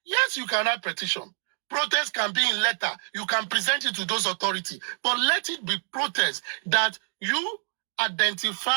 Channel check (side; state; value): left; silent; digital silence